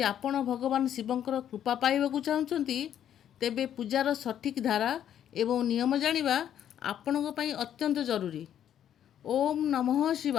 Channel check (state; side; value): quieter; right; 10.1 dB